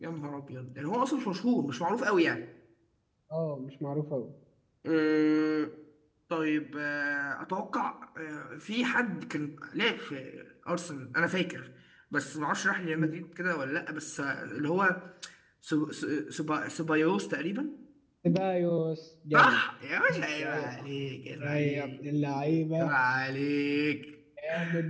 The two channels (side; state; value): both; identical; correlation 1.00